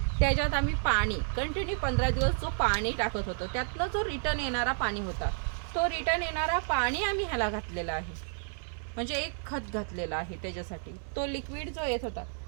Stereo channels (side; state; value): left; silent; 57 dB below the other